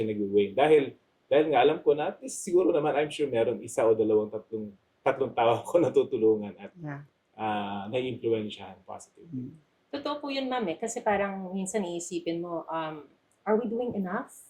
nag-wane. Dahil nga alam ko na, at least siguro naman, I'm sure meron 1 o 2, tatlong tao ko natutulungan at na-influensyahan positively. Totoo po yun, ma'am, kasi parang minsan iisipin mo, are we doing enough?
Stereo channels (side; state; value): both; identical; correlation 1.00